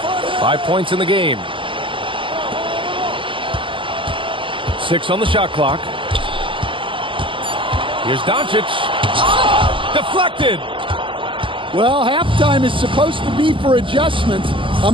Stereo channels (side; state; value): left; late; 0.25 ms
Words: 5 points in the game. 6 on the shot clock. Here's Doncic. Deflected. Well, halftime is supposed to be for adjustments.